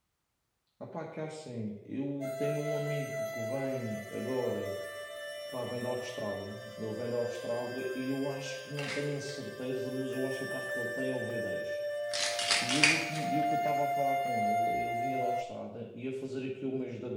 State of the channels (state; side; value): identical; both; correlation 1.00